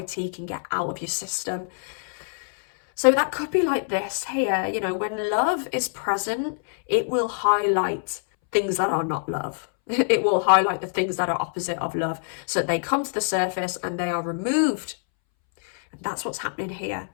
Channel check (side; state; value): right; silent; 62 dB below the other